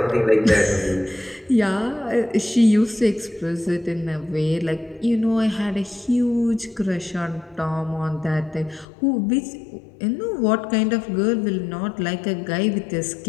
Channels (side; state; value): right; drops out; at 8.8 s